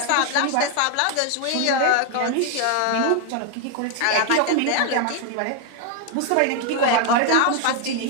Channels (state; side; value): different; both; correlation 0.00